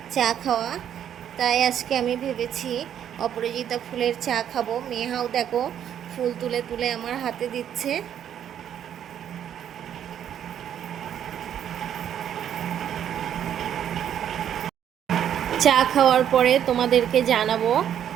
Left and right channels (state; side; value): quieter; left; 9.7 dB